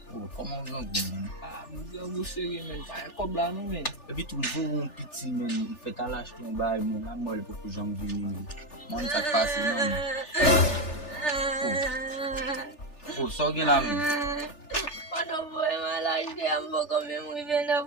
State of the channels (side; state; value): right; late; 3.4 ms